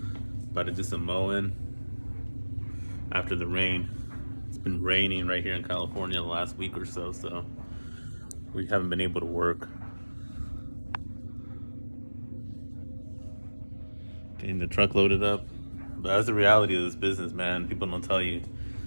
About to do some mowing after the rain. It's been raining right here in California the last week or so, so we haven't been able to work. Getting the truck loaded up. But that's the reality of this business, man. People don't tell you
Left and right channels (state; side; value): inverted; both; correlation -1.00